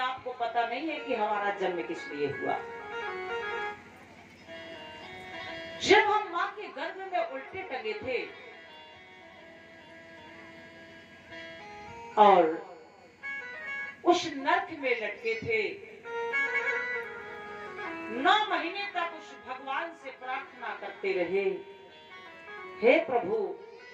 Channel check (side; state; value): both; identical; correlation 1.00